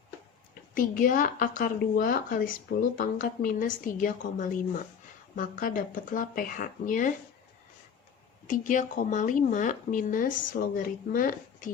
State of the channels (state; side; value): quieter; right; 7.1 dB